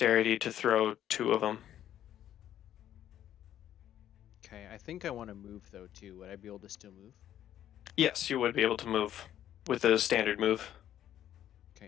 to throw 2 of them. Okay, I think I want to move though too. Would I be able to still move? Yes, you would be able to move with a standard move.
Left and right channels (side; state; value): right; quieter; 11.3 dB